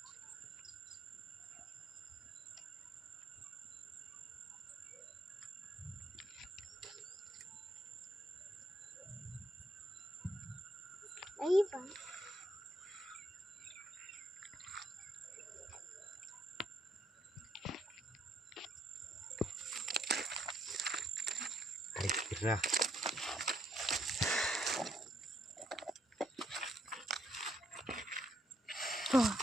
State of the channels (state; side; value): normal; both; correlation 0.73